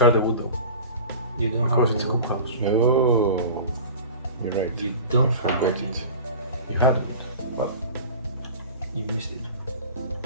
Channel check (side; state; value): both; inverted; correlation -0.37